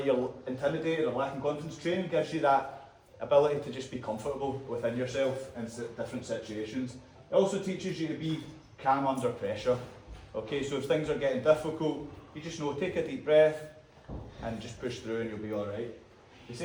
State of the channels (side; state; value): both; identical; correlation 1.00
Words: you're intimidated or lacking confidence, training gives you that ability to just be comfortable within yourself in different situations. It also teaches you to be calm under pressure. Okay, so if things are getting difficult, you just know, take a deep breath and just push through and you'll be alright. They